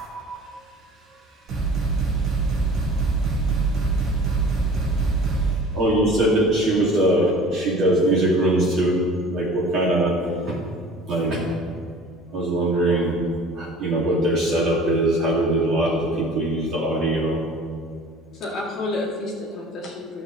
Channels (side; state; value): both; normal; correlation 0.45